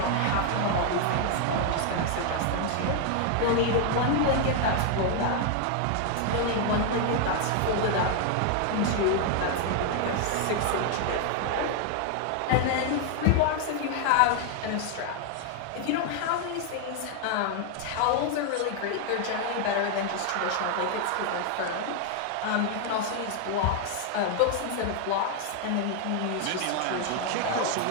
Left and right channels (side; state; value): both; different; correlation 0.00